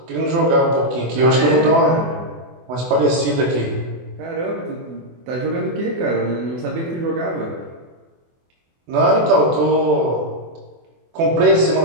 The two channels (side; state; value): left; late; 24 ms